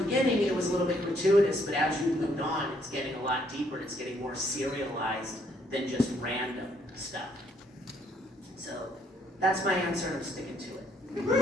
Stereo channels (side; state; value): both; normal; correlation 0.69